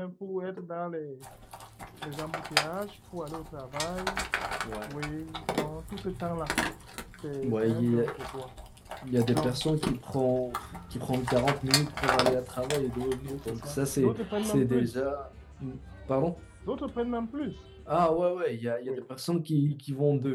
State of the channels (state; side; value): identical; both; correlation 1.00